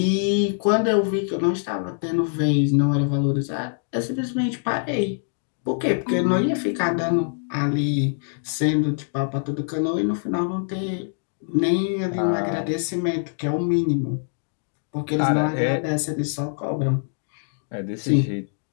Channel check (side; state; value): right; silent; digital silence